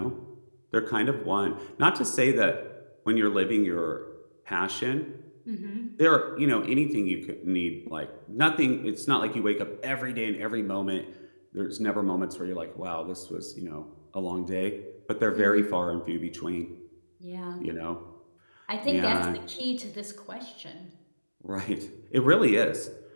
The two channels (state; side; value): inverted; both; correlation -1.00